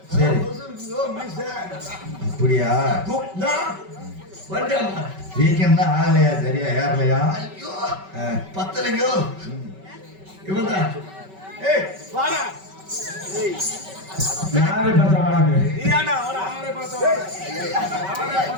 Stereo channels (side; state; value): left; late; 5.2 ms